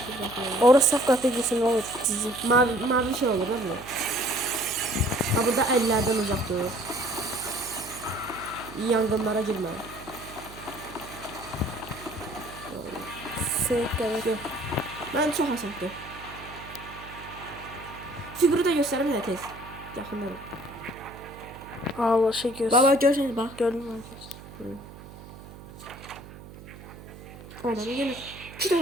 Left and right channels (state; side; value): noise; right; hum, 16 dB below the sound